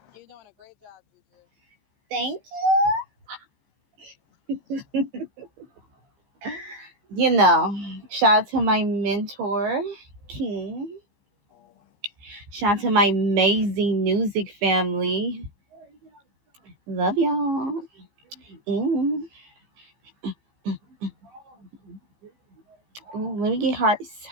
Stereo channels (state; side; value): late; left; 15 ms